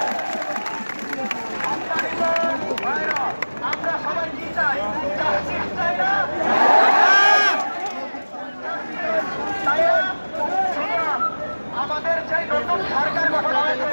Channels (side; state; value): both; inverted; correlation -1.00